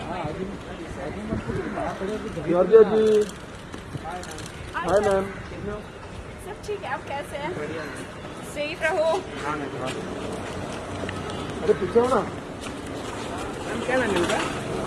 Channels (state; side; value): identical; both; correlation 1.00